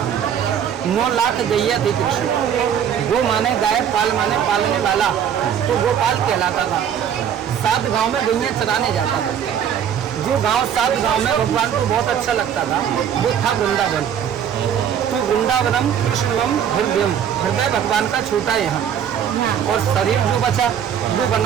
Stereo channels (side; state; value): left; quieter; 8.8 dB